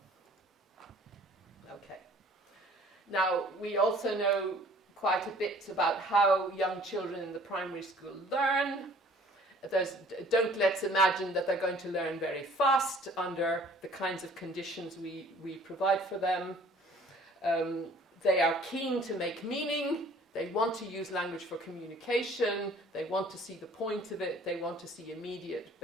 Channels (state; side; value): normal; both; correlation 0.53